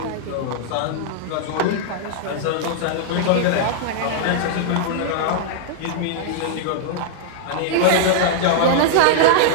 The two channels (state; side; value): different; both; correlation -0.01